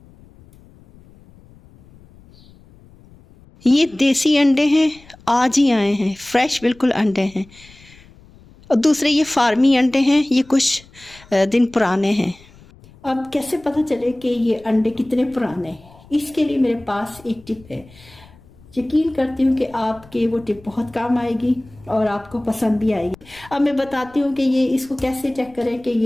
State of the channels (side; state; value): left; noise; rumble, 25 dB below the sound